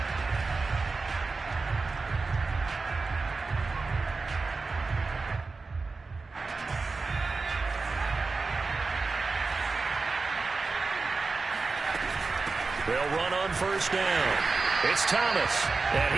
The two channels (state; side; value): quieter; left; 4.1 dB